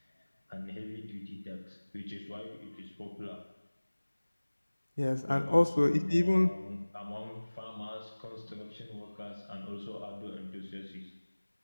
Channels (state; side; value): inverted; both; correlation -1.00